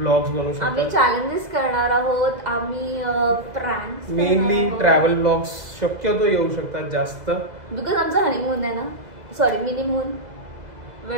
बनवू शकतो. आम्ही चॅलेंजेस करणार आहोत. आम्ही प्रँक्स, मेनली ट्रॅव्हल ब्लॉग्स शक्यतो येऊ शकतात जास्त, बिकॉज आमचा हनीमून आहे ना. Sorry, minimoon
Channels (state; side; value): late; left; 2.0 ms